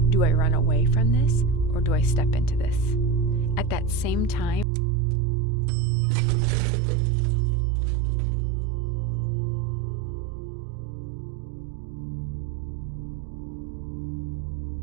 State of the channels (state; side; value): drops out; left; at 4.7 s